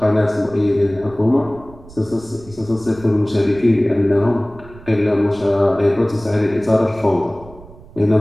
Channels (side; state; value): right; noise; rumble, 20 dB below the sound